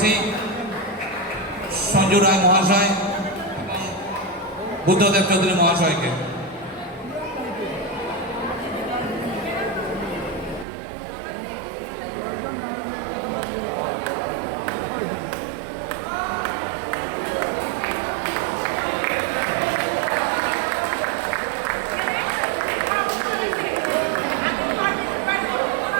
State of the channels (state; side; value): drops out; left; at 10.7 s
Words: সঞ্জু রায় মহাশয় এবং বুদ্ধদেব চৌধুরী মহাশয়কে।